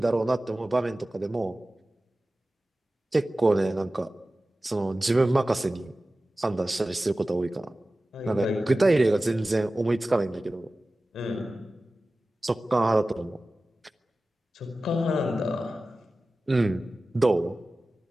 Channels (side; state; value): both; normal; correlation 0.96